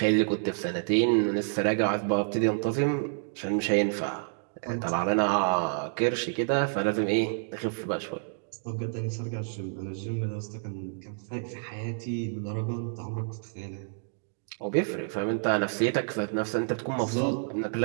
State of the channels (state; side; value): silent; left; digital silence